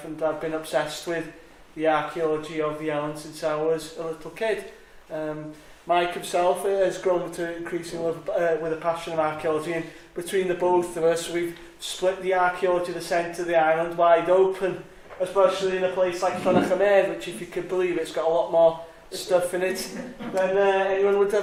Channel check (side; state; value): both; identical; correlation 1.00